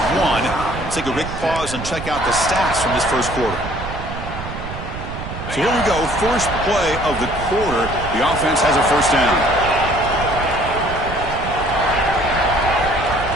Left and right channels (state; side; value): noise; right; rumble, 9 dB below the sound